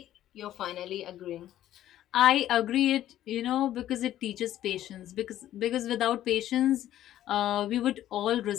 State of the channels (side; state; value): right; quieter; 12.7 dB